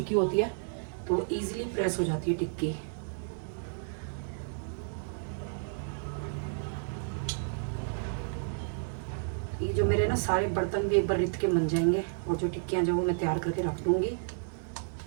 होती है, तो इजीली प्रेस हो जाती है टिक्की। ये जो मेरे ना सारे बर्तन भी एक बार रित के बन जाएंगे, और जो टिक्कियाँ जो वो मैं तैयार करके रख दूँगी,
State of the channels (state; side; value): silent; left; digital silence